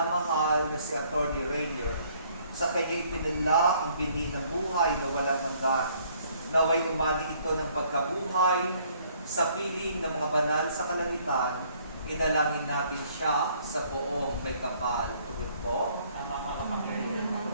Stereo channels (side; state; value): both; inverted; correlation -0.63